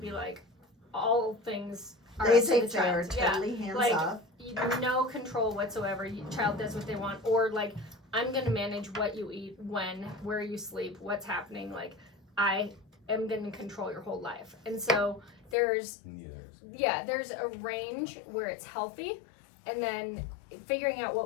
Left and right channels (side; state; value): right; drops out; at 15.6 s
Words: like all things are up to the Laissez-faire, child. Yeah. totally hands Like, off. No control whatsoever. Child does what they want, or like I'm gonna manage what you eat, when, where you sleep, what's happening. Like I am gonna control your whole life, and so there's a range where it's healthy, and then figuring out